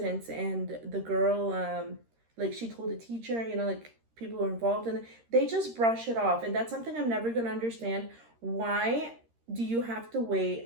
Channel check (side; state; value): left; late; 13 ms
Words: and the girl like she told the teacher, you know, like people were involved in it. They just brush it off, and that's something I'm never going to understand. Why do you have to